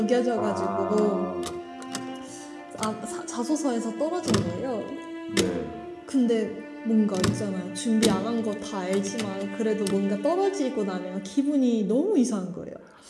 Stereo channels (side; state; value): both; identical; correlation 1.00